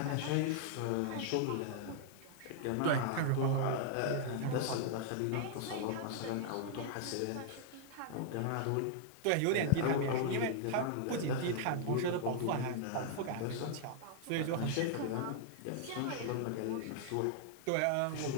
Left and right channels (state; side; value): different; both; correlation -0.01